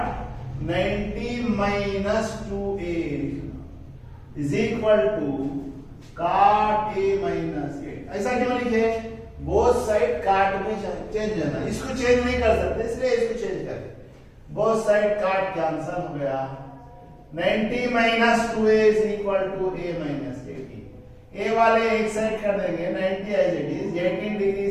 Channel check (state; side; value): identical; both; correlation 1.00